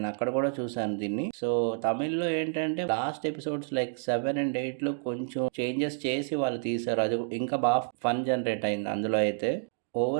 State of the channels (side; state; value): left; silent; digital silence